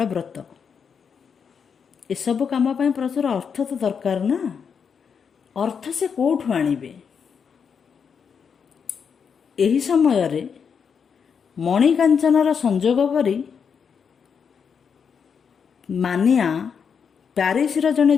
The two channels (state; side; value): quieter; right; 6.6 dB